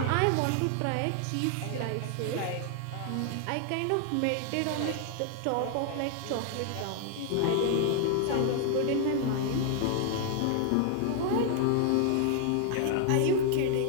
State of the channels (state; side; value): different; both; correlation 0.00